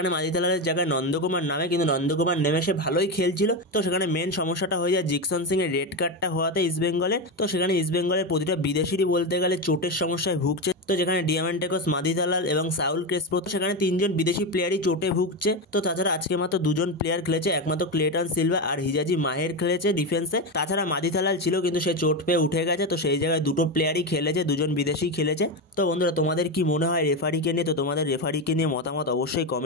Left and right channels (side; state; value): both; normal; correlation 0.14